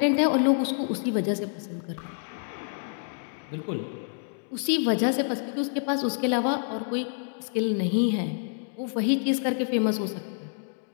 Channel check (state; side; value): silent; right; digital silence